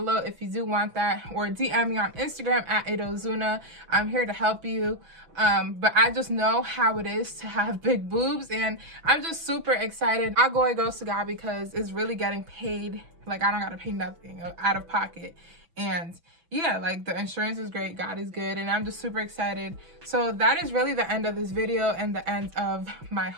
if you do want that, or DM me on Instagram at Aida. I'm here to help you. But I just know how it is to have big boobs, and I'm just super excited. All glory goes to God, because it's really getting paid. Like, I don't gotta pay nothing out of pocket, and yeah, like the insurance is great, God is good, and I'm just super excited. So that is really the end of this video and the end of my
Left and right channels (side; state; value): left; late; 6.0 ms